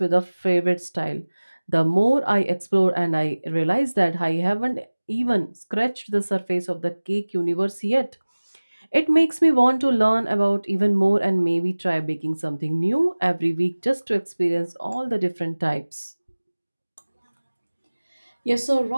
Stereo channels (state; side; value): inverted; both; correlation -1.00